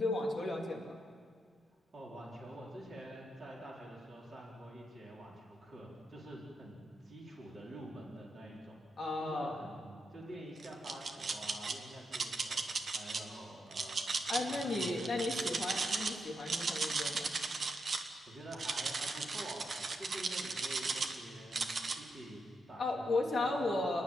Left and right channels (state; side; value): normal; both; correlation 0.83